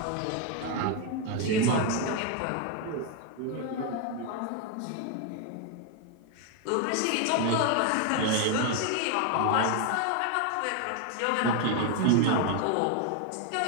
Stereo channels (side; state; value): both; different; correlation 0.01